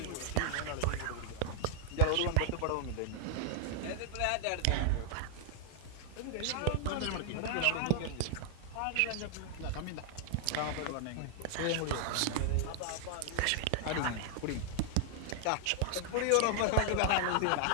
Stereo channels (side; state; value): both; different; correlation 0.00